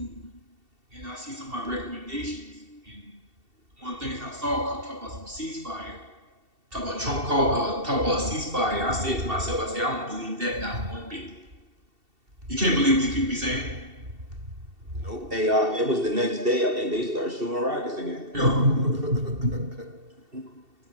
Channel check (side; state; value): left; late; 2.7 ms